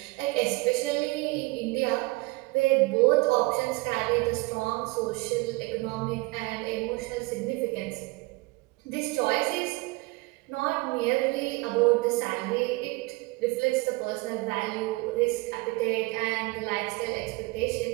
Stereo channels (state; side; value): quieter; left; 24.0 dB